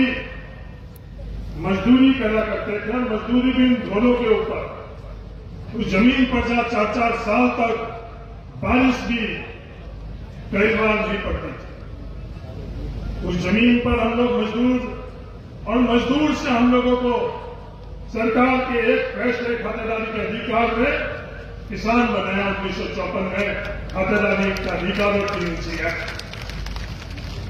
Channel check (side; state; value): both; identical; correlation 1.00